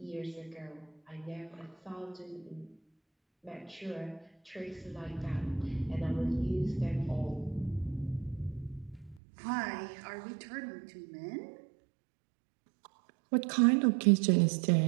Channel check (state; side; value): drops out; left; at 9.2 s